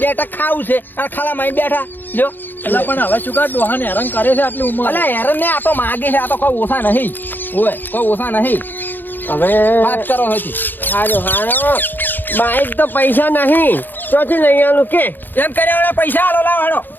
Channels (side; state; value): right; late; 0.091 ms